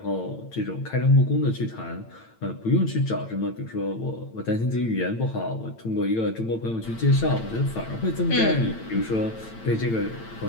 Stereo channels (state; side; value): late; right; 8.9 ms